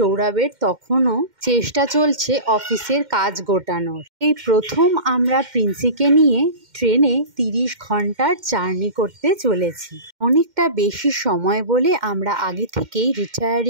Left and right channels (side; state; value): left; late; 2.1 ms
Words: তখনও চেষ্টা চলছে অফিসের কাজ গোটানোর। এই প্রথম আমরা প্রিন্সিকে নিয়ে ট্রেনে 30 ঘন্টার জার্নি করতে চলেছি। অনেকটা বেশি সময় বলে আমরা আগে থেকেই